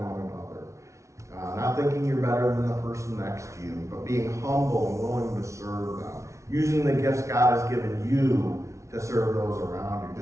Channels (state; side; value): late; left; 0.14 ms